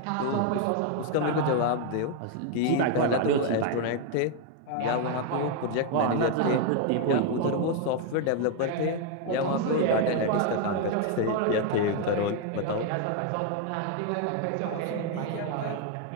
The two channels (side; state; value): both; different; correlation 0.01